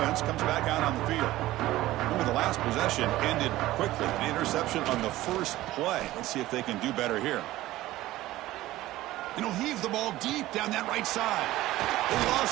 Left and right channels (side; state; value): left; quieter; 16.3 dB